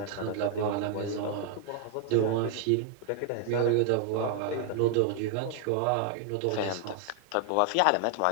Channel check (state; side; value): different; both; correlation 0.00